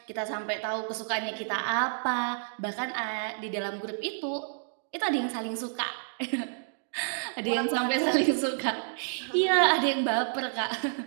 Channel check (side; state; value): left; silent; digital silence